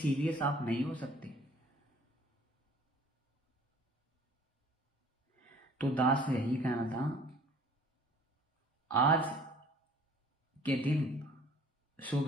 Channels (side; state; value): both; normal; correlation 0.52